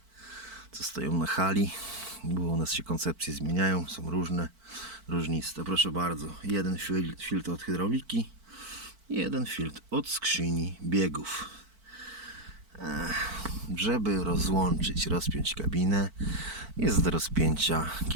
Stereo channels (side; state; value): left; late; 4.5 ms